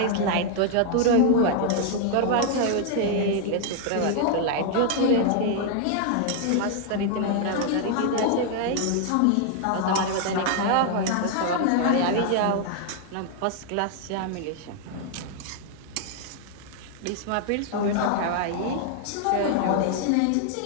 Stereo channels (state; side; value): different; both; correlation 0.00